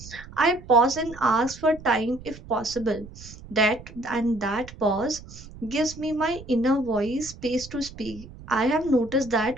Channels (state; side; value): noise; right; rumble, 17 dB below the sound